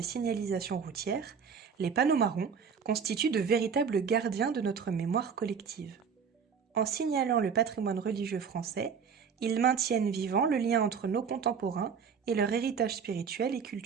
signalisation routière, les panneaux marrons constituent de véritables gardiens de notre mémoire collective. En signalant le patrimoine religieux français, ils maintiennent vivant le lien entre nos contemporains et leur héritage spirituel et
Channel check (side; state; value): left; quieter; 6.4 dB